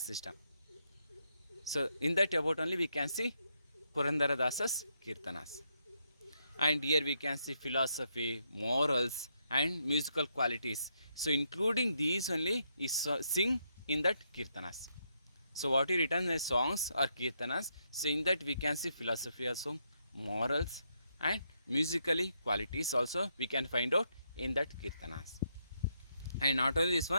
system. So in that about only we can see Purandaradasa's Kirtanas. And here we can see philosophy, morals and musical qualities. So including these only is sing in that Kirtanas. So what he written as songs or Kirtanas, so in that we can see philosophy also, morals and musically qualities also we can find out in that Kirtanas. And not only this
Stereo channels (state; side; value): inverted; both; correlation -0.78